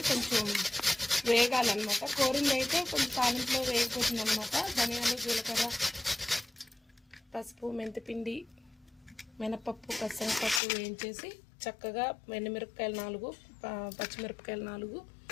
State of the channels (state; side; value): drops out; right; at 10.6 s